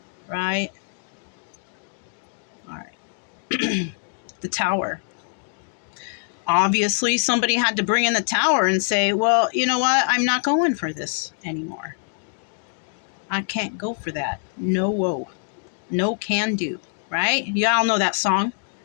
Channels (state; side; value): silent; right; digital silence